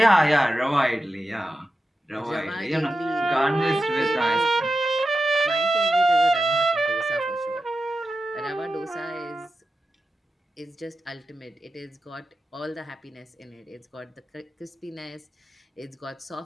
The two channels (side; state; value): both; normal; correlation 0.91